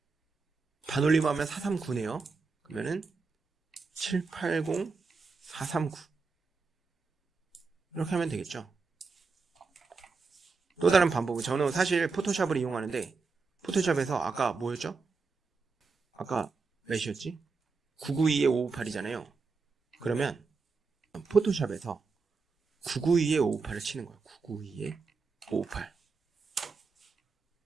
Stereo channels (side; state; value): left; quieter; 4.5 dB